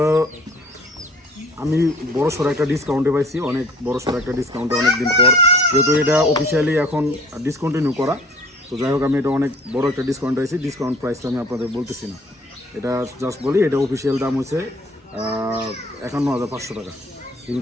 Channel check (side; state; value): both; normal; correlation 0.51